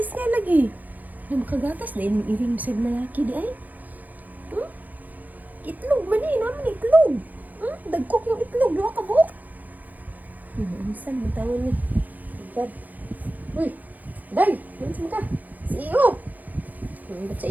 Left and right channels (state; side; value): late; left; 0.083 ms